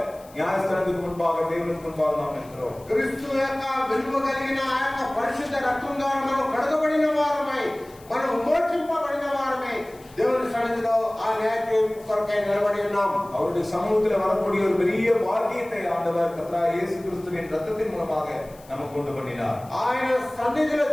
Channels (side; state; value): left; noise; hiss, 25 dB below the sound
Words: நியாயஸ்தலத்துக்கு முன்பாக, தேவனுக்கு முன்பாக நாம் இருக்கிறோம். క్రీస్తు యొక్క విలువ కలిగిన ఆ యొక్క పరిశుద్ధ రక్తం ద్వారా మనం కడగబడిన వారమై, మనం మోక్షింపబడిన వారమై దేవుని సన్నిధిలో ఆ న్యాయ తీర్పు కొరకై నిలబడి ఉన్నాం. அவருடைய சமூகத்தில் வரக்கூடிய ஒரு பெரிய பாக்கியத்தை ஆண்டவர் கர்த்தராகிய இயேசு கிறிஸ்துவின் ரத்தத்தின் மூலமாக நமக்கு கொண்டு பண்ணினார். ఆయన సన్నిధిలో